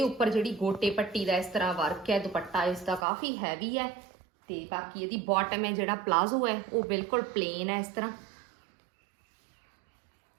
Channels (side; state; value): left; drops out; at 3.1 s